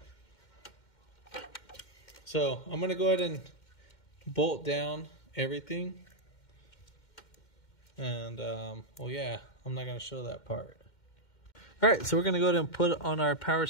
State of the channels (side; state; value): right; late; 2.1 ms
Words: So I'm gonna go ahead and bolt down everything. And well, yeah, I'm not gonna show that part. All right, so we're gonna go ahead and put on our power